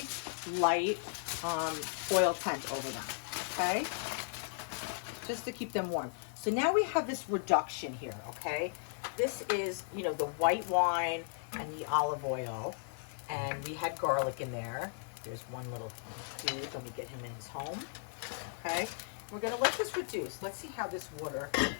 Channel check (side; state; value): right; silent; 54 dB below the other